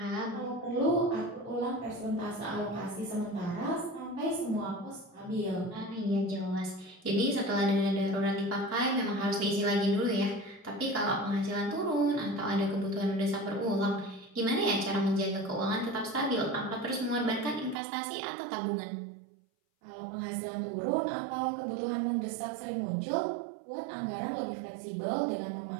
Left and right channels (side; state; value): left; drops out; at 17.8 s